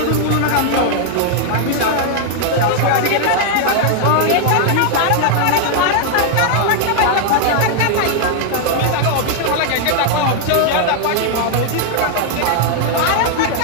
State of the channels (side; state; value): both; different; correlation -0.01